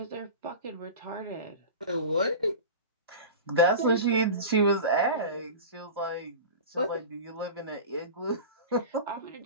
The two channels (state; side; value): inverted; both; correlation -0.30